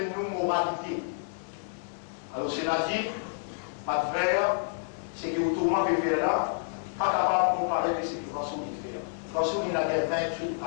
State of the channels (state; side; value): silent; right; 58 dB below the other